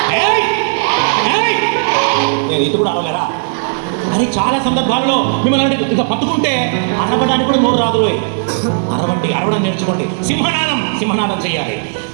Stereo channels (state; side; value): silent; left; digital silence